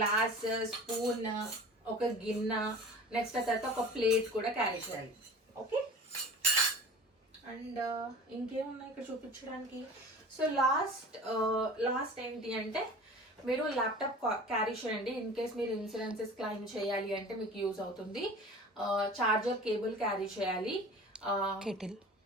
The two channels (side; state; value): both; normal; correlation 0.40